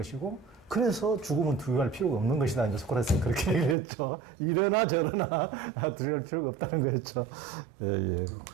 그래서 죽음은 두려워할 필요가 없는 것이다. 이제 소크라테스는 그렇게 얘기했죠. 이러나 저러나 두려워할 필요가 없다는 거였죠. 예, 예.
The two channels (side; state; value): left; drops out; at 3.8 s